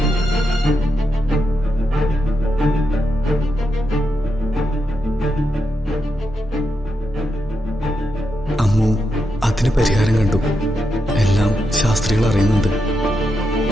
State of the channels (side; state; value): both; normal; correlation 0.85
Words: അമ്മു അതിന് പരിഹാരം കണ്ടു. എല്ലാം ശാസ്ത്രികൾ അറിയുന്നുണ്ട്.